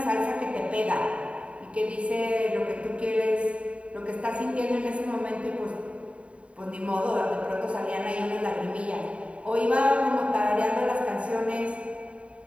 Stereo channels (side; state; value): left; late; 0.063 ms